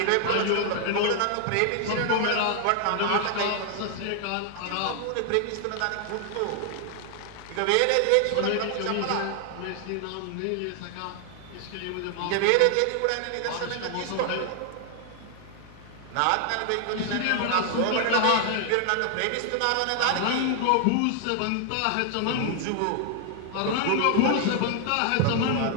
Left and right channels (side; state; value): both; different; correlation 0.00